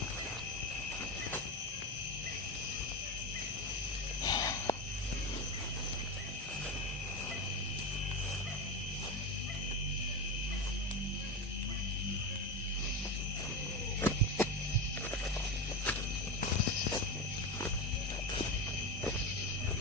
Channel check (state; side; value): normal; both; correlation 0.18